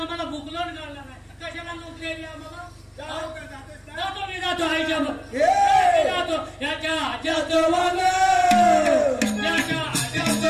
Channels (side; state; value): both; identical; correlation 1.00